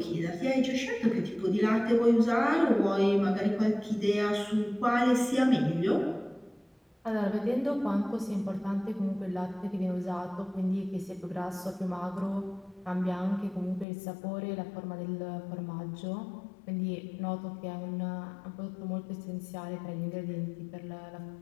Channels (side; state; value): right; drops out; at 13.9 s